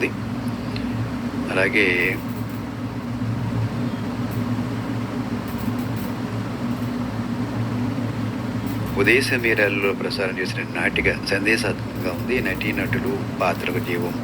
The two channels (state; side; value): identical; both; correlation 1.00